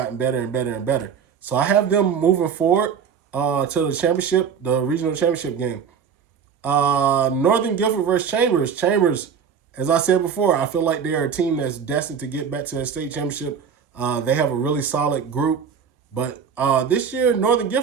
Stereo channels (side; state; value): left; quieter; 7.1 dB